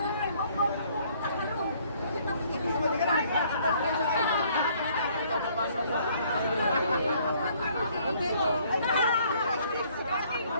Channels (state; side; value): inverted; both; correlation -0.62